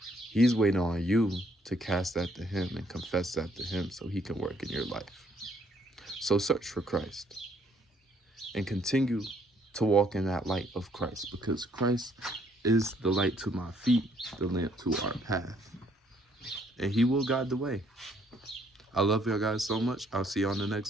He's waiting on you to cast that to him and confess that to him, so he can work in your life. So search for Christ and continue to walk in that light of Christ, because Christ is the light to my feet, the lamp to our path, and he will guide the way. I love y'all guys so much. I'll see you on the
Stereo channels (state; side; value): normal; both; correlation 0.66